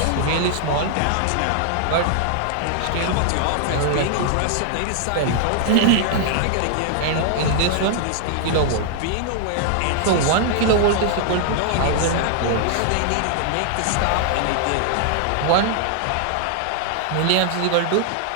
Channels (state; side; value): different; both; correlation -0.01